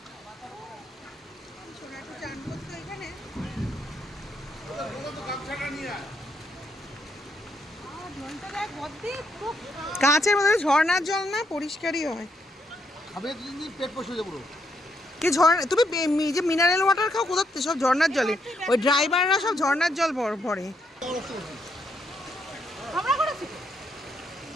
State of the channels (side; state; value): both; normal; correlation 0.77